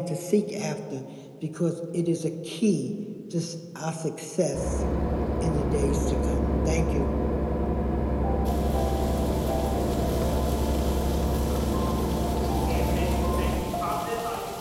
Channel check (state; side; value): identical; both; correlation 1.00